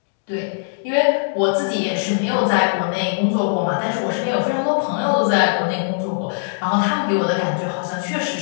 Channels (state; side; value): silent; right; digital silence